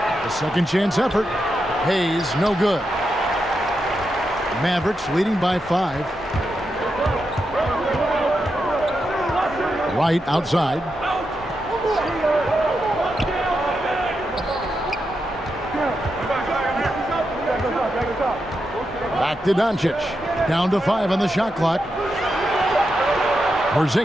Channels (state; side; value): normal; both; correlation 0.86